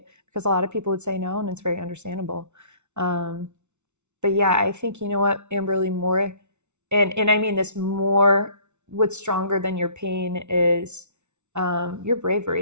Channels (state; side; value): late; left; 0.82 ms